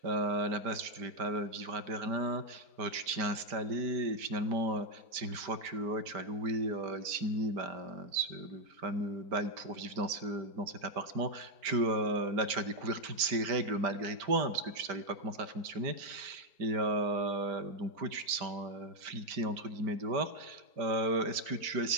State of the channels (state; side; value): late; left; 5.0 ms